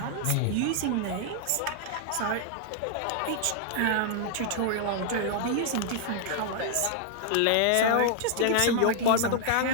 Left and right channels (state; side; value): different; both; correlation -0.01